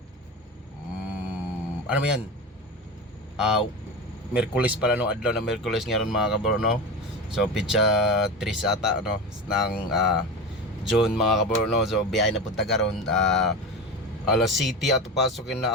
ano mo yan? Miyerkules pala no, adlaw na Miyerkules ngayon mga kabro, no? So pitsa 3 ata no ng June mga kabro, no? So biyahe napunta karon alas 7 ato pasokin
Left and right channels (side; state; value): both; normal; correlation 0.25